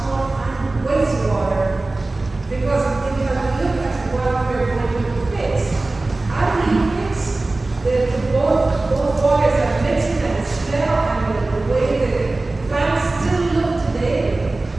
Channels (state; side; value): quieter; left; 3.1 dB